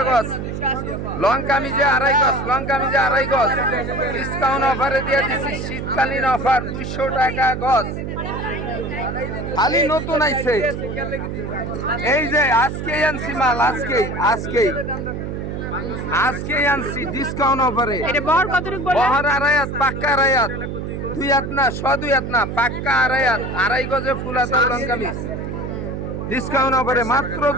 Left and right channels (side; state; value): right; noise; hum, 5 dB below the sound